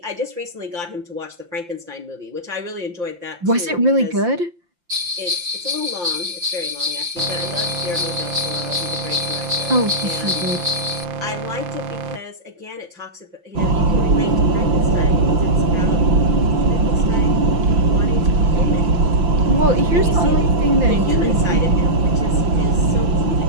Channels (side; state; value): left; late; 5.8 ms